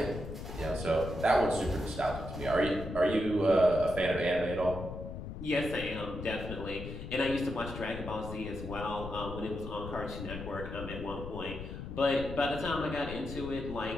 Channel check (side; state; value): left; noise; rumble, 8 dB below the sound